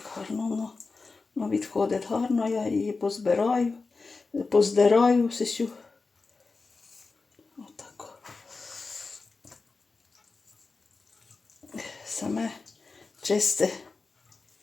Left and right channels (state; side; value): quieter; right; 4.0 dB